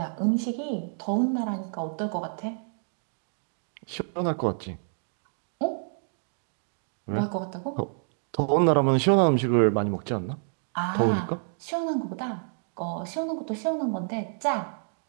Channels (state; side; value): silent; left; digital silence